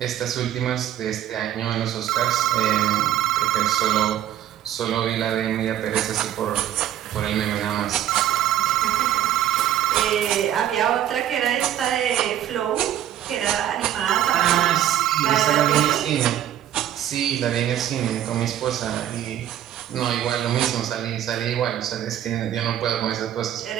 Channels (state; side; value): quieter; left; 11.6 dB